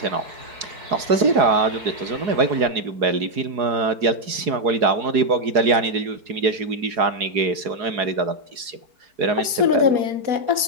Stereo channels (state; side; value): late; left; 4.8 ms